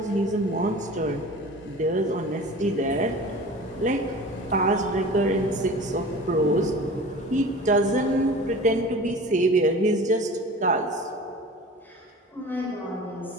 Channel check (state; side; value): normal; both; correlation 0.39